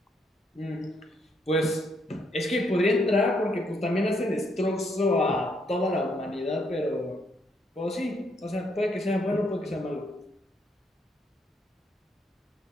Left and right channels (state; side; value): normal; both; correlation 0.74